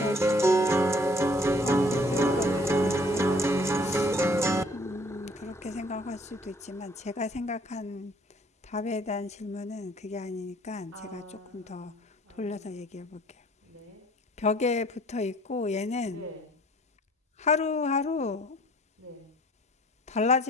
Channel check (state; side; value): normal; both; correlation 0.57